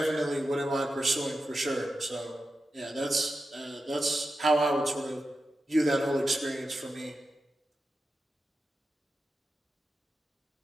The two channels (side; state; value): both; normal; correlation 0.90